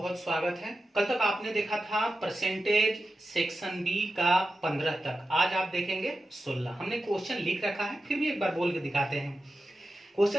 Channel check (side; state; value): both; normal; correlation 0.92